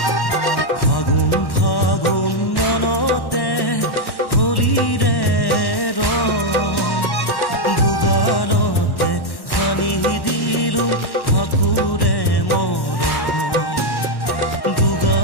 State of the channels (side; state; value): right; late; 1.1 ms